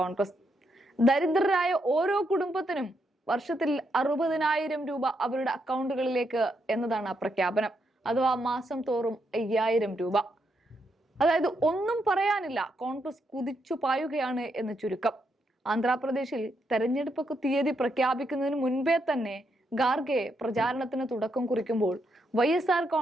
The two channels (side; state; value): both; normal; correlation 0.80